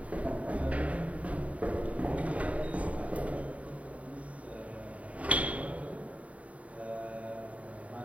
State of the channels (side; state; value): left; late; 0.067 ms